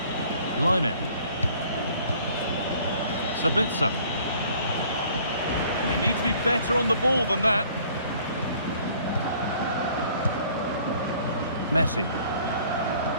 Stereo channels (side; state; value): both; inverted; correlation -0.56